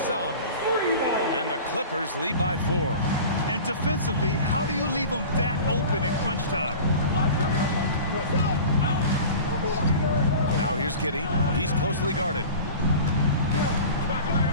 And the Clippers lead by 4. And defensively, how do you leave them that open in crunch time? Now here's Giddey. He's closely guarded.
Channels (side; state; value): both; inverted; correlation -0.37